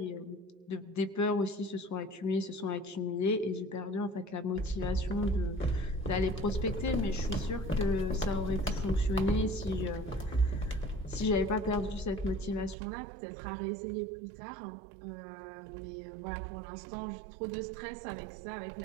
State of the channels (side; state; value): left; drops out; at 12.8 s